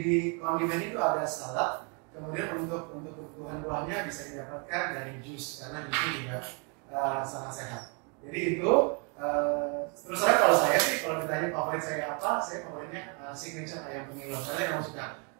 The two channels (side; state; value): left; quieter; 35.5 dB